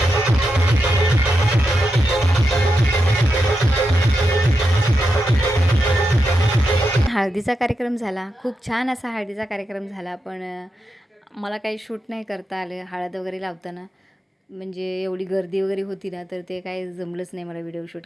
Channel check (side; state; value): both; normal; correlation 0.86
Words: हळदीचा कार्यक्रम झाला. खूप छान असा हळदीचा कार्यक्रम झाला. पण मला काही शूट नाही करता आलं हळद वगैरे लावताना. म्हणजे एवढी गर्दी वगैरे होती ना, तर ते काही जमलंच नाही मला व्हिडिओ शूट